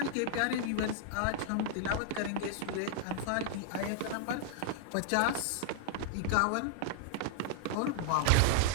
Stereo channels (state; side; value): different; both; correlation 0.00